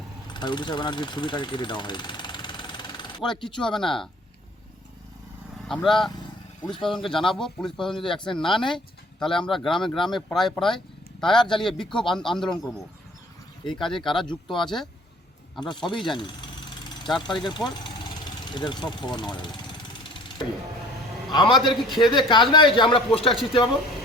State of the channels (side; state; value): both; normal; correlation 0.52